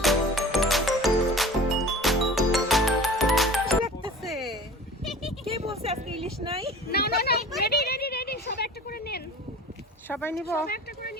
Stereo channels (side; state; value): both; normal; correlation 0.40